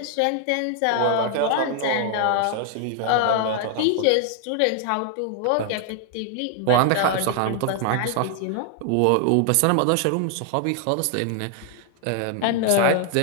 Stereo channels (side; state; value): both; different; correlation 0.00